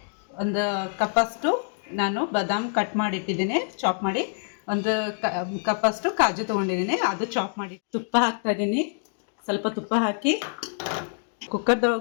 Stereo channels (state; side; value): silent; right; 61 dB below the other